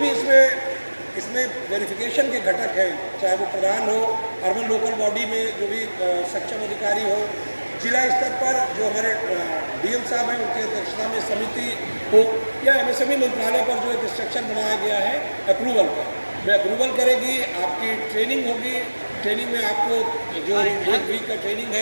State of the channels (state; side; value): inverted; both; correlation -1.00